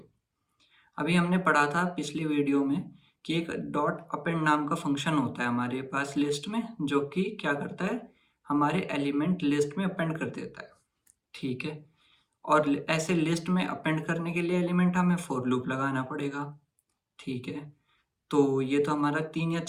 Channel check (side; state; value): both; identical; correlation 1.00